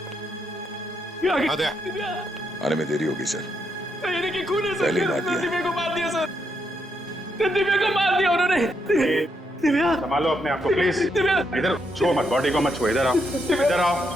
दिव्या! आद्या। दिव्या! आने में देरी होगी सर। सर ये देखिए खून है सर। पहले ही मार दिया। दिव्या को मार दिया सर। दिव्या को मार दिया उन्होंने। दिव्या! संभालो अपने आप को प्लीज। दिव्या! इधर छुओ मत, बॉडी को मत छुओ। इधर आओ, इधर आओ।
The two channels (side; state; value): both; normal; correlation 0.79